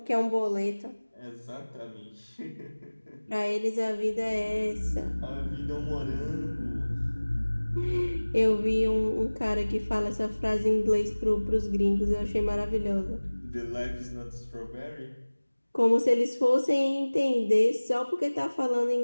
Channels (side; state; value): both; inverted; correlation -1.00